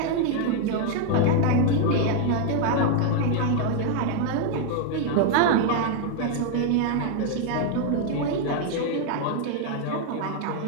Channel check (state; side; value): different; both; correlation 0.00